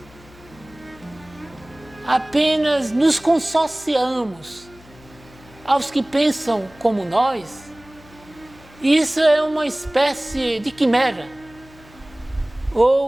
apenas nos consorciamos aos que pensam como nós, isso é uma espécie de quimera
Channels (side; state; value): left; noise; hum, 24 dB below the sound